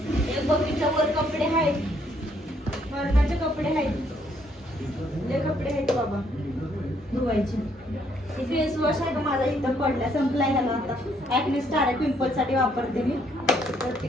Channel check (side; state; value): both; normal; correlation 0.69